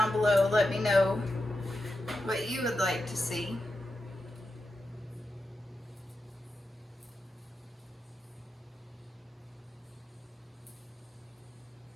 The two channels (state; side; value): normal; both; correlation 0.89